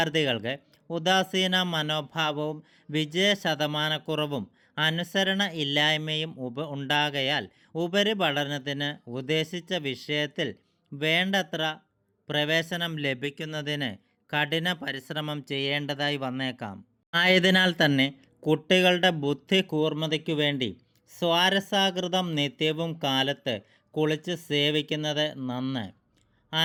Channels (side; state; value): both; identical; correlation 1.00